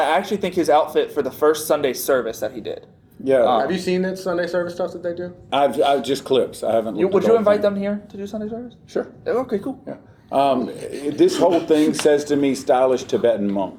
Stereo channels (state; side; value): identical; both; correlation 1.00